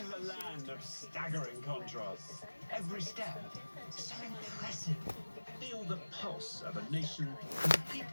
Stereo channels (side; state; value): both; inverted; correlation -1.00